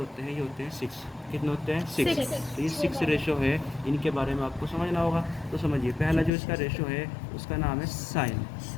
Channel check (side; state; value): right; drops out; at 6.3 s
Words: हैं, ये होते हैं 6। कितने होते हैं, 6। तो ये 6 रेशो है, इनके बारे में आपको समझना होगा। तो समझिए, पहला जो इसका रेशो है उसका नाम है साइन,